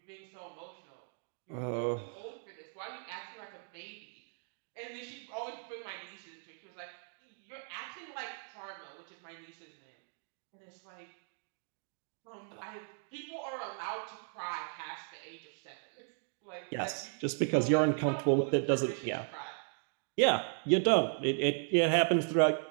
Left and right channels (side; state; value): left; silent; 53 dB below the other